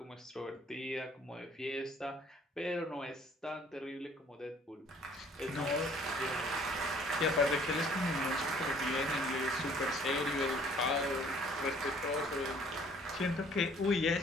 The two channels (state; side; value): normal; both; correlation 0.57